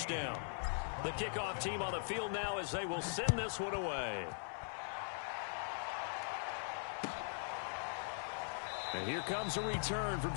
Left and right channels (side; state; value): right; silent; digital silence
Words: The kickoff team on the field now as they will send this one away. And here comes a return from